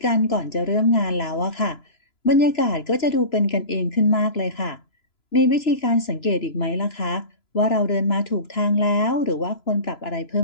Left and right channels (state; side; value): late; right; 3.0 ms